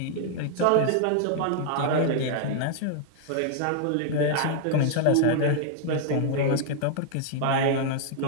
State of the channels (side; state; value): both; different; correlation -0.01